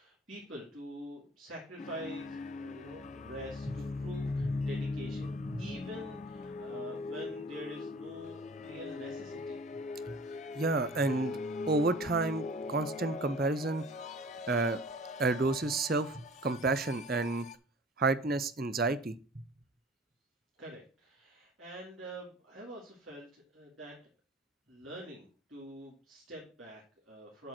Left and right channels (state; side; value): normal; both; correlation 0.46